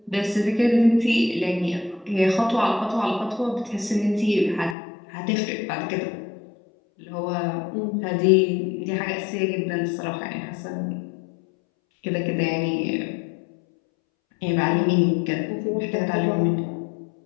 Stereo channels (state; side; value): drops out; right; at 4.8 s